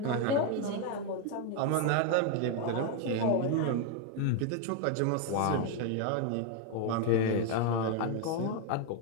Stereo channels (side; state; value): both; different; correlation 0.01